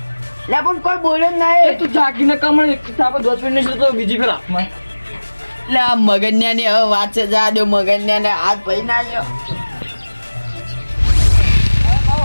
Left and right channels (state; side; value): inverted; both; correlation -1.00